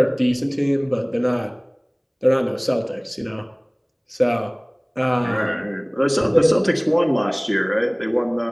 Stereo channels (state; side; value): identical; both; correlation 1.00